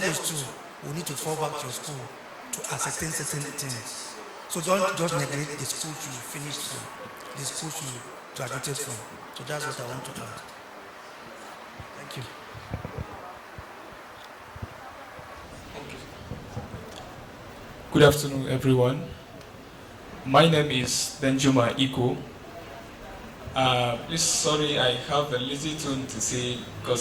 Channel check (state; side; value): identical; both; correlation 1.00